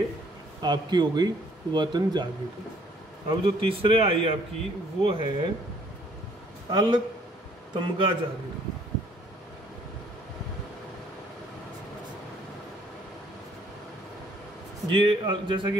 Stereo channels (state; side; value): normal; both; correlation 0.62